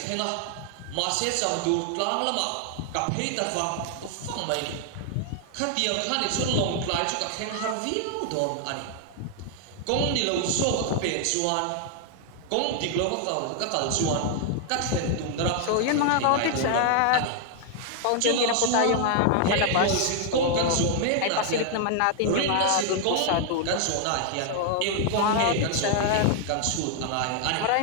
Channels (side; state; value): both; different; correlation 0.00